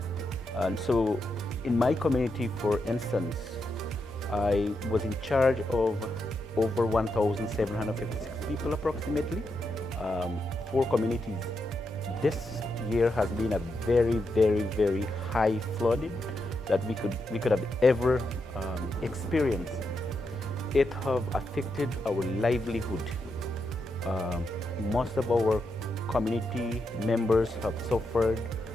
And so in my community, for instance, I was in charge of over 1,756 people approximately, 4 communities. This year has been a very, very, very high flooding that we could have ever experienced. It have affected our livelihood. Most of our community members have suffered.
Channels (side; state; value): both; normal; correlation 0.84